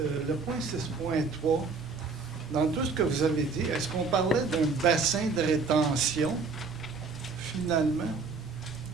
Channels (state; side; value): quieter; left; 4.6 dB